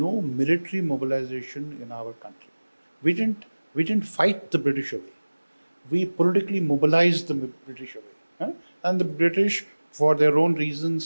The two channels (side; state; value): both; inverted; correlation -1.00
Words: military mobilization in our country. We didn't fight the British away. We politically mobilized the British away. Huh? And the British, for their own